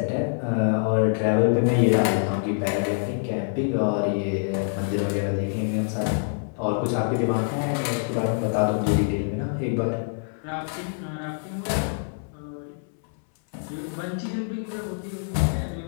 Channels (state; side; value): silent; right; 61 dB below the other